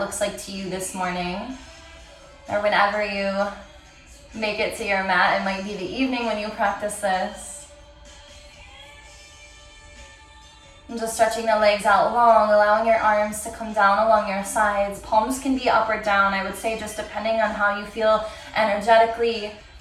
like to you this morning, or whenever you make it to your mat. It might be the evening when you practice this. And just stretching the legs out long, allowing your arms to come down along your sides. Palms can be up or down, I would say, just depending on how you feel energetically.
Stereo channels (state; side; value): identical; both; correlation 1.00